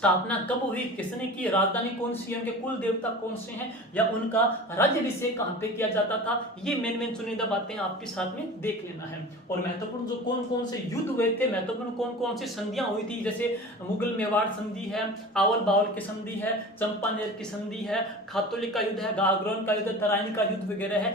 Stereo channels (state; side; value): normal; both; correlation 0.36